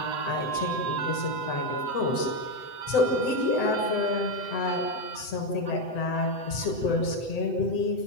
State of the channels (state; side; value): late; right; 7.9 ms